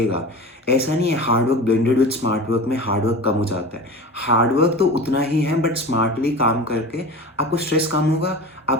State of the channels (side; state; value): both; normal; correlation 0.32